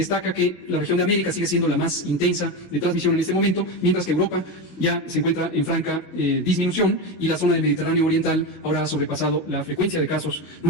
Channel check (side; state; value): right; late; 18 ms